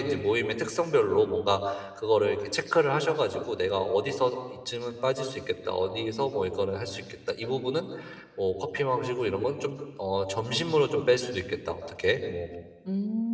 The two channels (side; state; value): both; identical; correlation 1.00